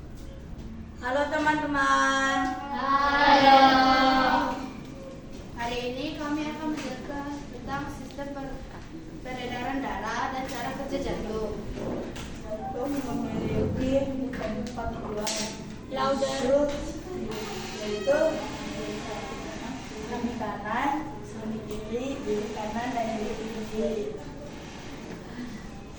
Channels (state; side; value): identical; both; correlation 1.00